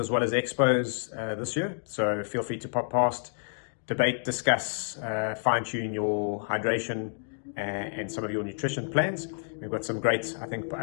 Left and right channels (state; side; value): silent; right; digital silence